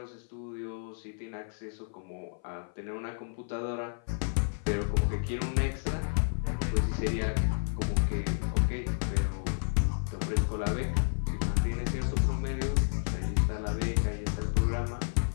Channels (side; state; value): right; silent; 56 dB below the other